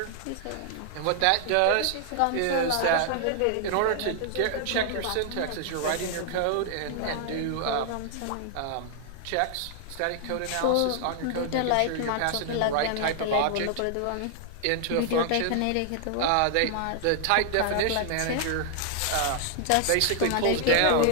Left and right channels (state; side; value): different; both; correlation 0.00